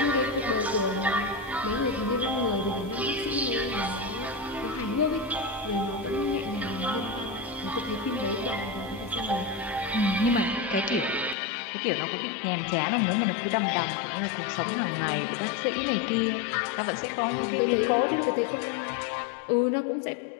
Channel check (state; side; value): drops out; right; at 11.4 s